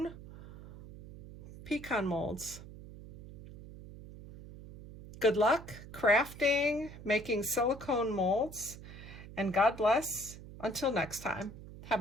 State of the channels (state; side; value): noise; right; hum, 14 dB below the sound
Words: pecan molds. Good luck crafting, making silicone molds, and God bless. Until next time,